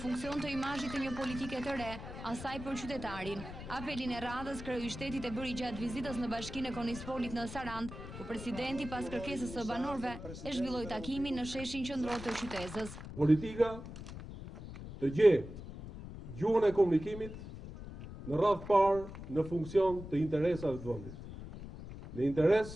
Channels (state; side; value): noise; left; rumble, 11 dB below the sound